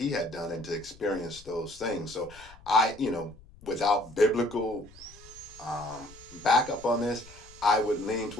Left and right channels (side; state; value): left; noise; rumble, 22 dB below the sound